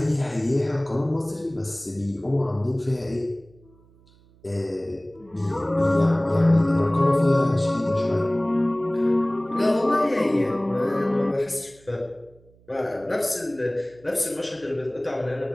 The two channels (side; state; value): right; noise; hum, 29 dB below the sound